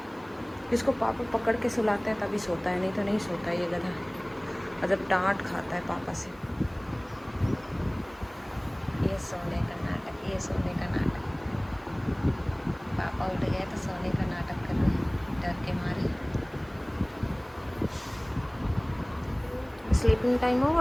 इसको पापा पकड़ के सुलाते हैं तभी सोता है, नहीं तो नहीं सोता ये गधा, मतलब डांट खाता है पापा से। ये सोने का नाटक, ये सोने का नाटक। पापा उठ गए तो सोने का नाटक कर रहे हैं डर के मारे। स्लीपिंग टाइम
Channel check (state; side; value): noise; right; hiss, 30 dB below the sound